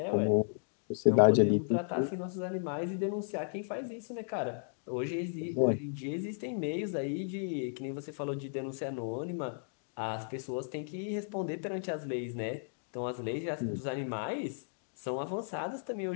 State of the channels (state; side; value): silent; right; digital silence